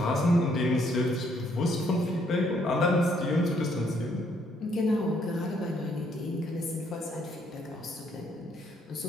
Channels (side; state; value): both; normal; correlation 0.69